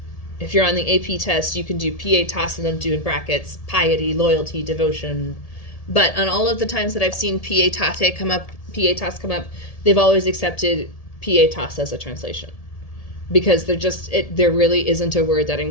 If you're on the AP test, you can do pietas and then do in brackets piety, loyalty, devotion. But on all of the times that I've seen pietas come up, they've always accepted pietas as a translation. Because there really isn't a word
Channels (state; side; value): late; right; 1.7 ms